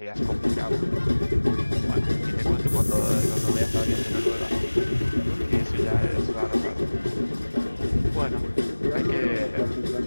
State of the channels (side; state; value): both; inverted; correlation -1.00